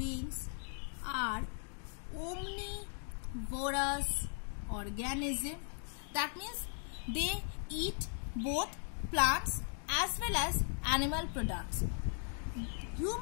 are omnivorous organism. That means they eat both plants as well as animal products.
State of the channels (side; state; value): right; silent; 52 dB below the other